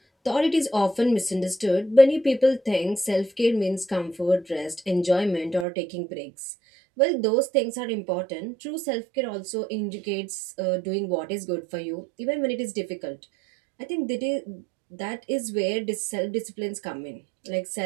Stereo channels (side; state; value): left; drops out; at 5.7 s